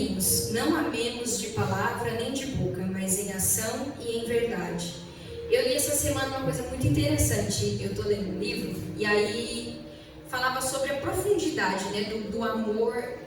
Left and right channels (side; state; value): both; identical; correlation 1.00